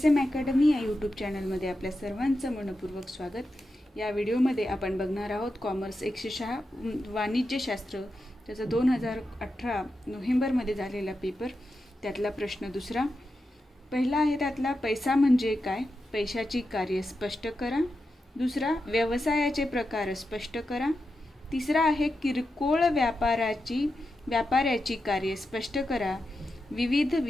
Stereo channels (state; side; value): normal; both; correlation 0.89